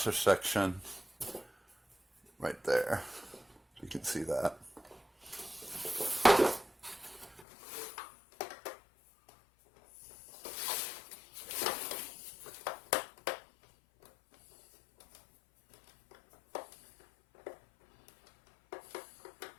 section right there. You can see that.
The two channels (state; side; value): drops out; right; at 7.5 s